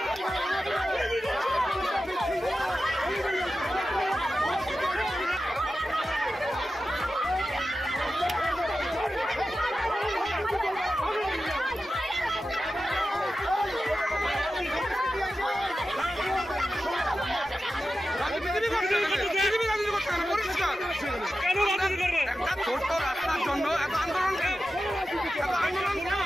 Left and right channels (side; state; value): both; normal; correlation 0.92